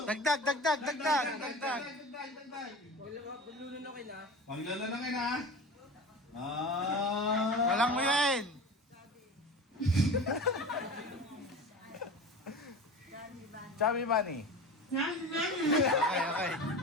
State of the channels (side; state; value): both; normal; correlation 0.34